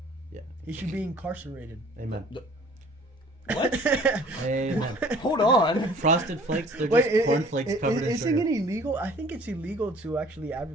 yeah, He should be incarcerated. amen. What? Amen. Hold on. Frosted Flakes, they're Wait, just cornflakes covered in isn't it sugar. illegal? I think it's illegal to actually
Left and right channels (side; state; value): both; normal; correlation 0.52